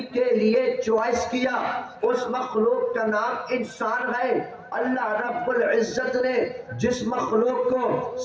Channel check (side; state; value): both; identical; correlation 1.00